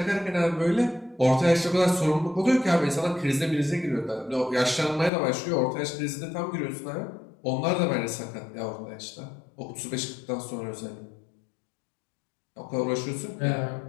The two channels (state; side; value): drops out; right; at 5.1 s